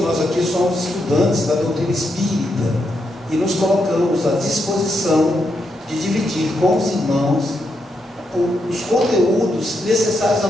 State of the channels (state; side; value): normal; both; correlation 0.82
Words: aqui somos estudantes da doutrina espírita e nos colocamos à disposição de dividir com os irmãos os conteúdos necessários a